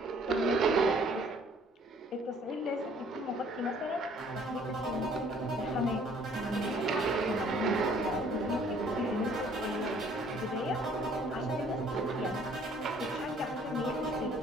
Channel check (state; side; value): normal; both; correlation 0.58